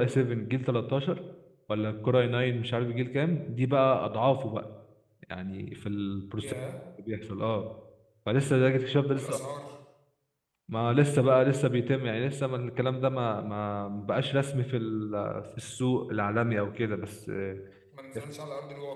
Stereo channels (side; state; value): both; identical; correlation 1.00